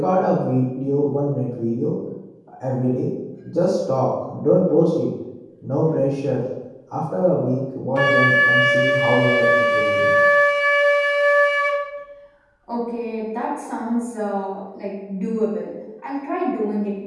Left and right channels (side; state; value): both; identical; correlation 1.00